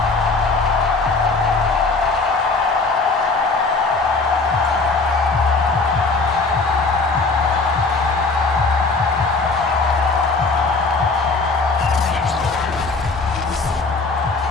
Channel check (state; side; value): quieter; right; 3.9 dB